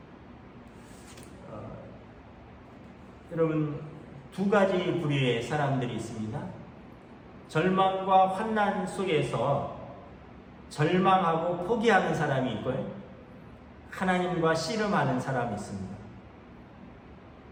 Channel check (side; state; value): both; identical; correlation 1.00